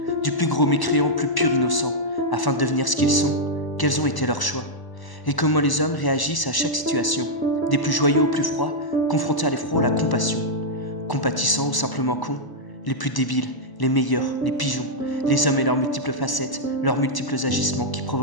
du plus gros mécréant au plus pur innocent, afin de devenir ce qu'ils sont, quels ont été leurs choix, et comment les hommes réagissent à chaque situation, des plus joyeux aux plus froids, confrontés à l'effroi ou à la compassion, compatissants ou simplement cons, les plus débiles, les meilleurs, les pigeons, les hommes et leurs multiples facettes, leurs multiples agissements qui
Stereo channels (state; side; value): late; right; 1.0 ms